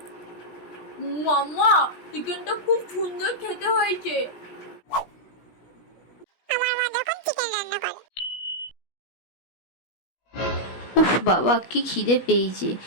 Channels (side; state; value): right; late; 17 ms